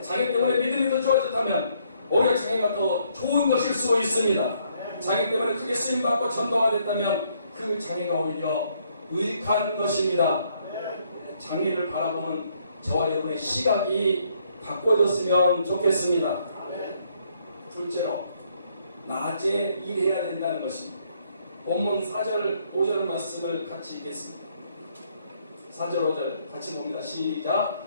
장애 때문에 믿음이 더 좋아졌다면 오히려 장애가 더 좋은 것일 수 있습니다. 장애 때문에 크게 쓰임받고 전도가 됐다면 그 장애가 오히려 유익한 것입니다. 장애를 바라보는 저와 여러분의 시각이 바꿔졌으면 좋겠습니다. 둘째로, 낮에 일해야 된다는 것입니다. 본문 4절 5절 말씀을 같이 읽겠습니다. 4절 5절 같이 봅니다. 시작.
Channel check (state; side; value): inverted; both; correlation -0.70